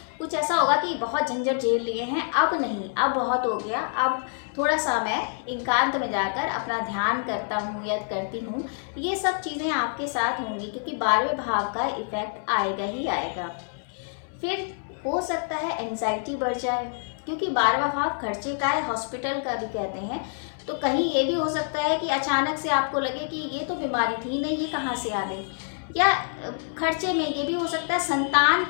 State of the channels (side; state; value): right; silent; digital silence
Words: कुछ ऐसा होगा कि बहुत झंझट झेल लिए हैं, अब नहीं, अब बहुत हो गया, अब थोड़ा सा मैं एकांत में जाकर अपना ध्यान करता हूँ या करती हूँ। ये सब चीज़ें आपके साथ होंगी, क्योंकि 12वें भाव का इफेक्ट आएगा ही आएगा। फिर हो सकता है एंजाइटी बढ़ जाए, क्योंकि 12वां भाव खर्चे का है, हॉस्पिटल का भी कहते हैं। तो कहीं ये भी हो सकता है कि अचानक से आपको लगे कि ये तो बीमारी थी नहीं, ये कहाँ से आ गई। या खर्चे में ये भी हो सकता है संतान